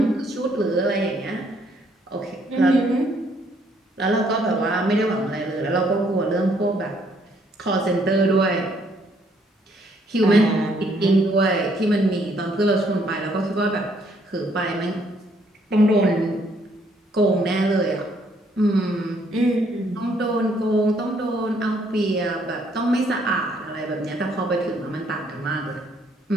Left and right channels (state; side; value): normal; both; correlation 0.68